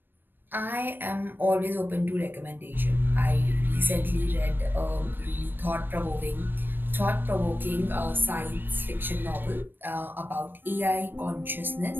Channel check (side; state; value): left; late; 0.095 ms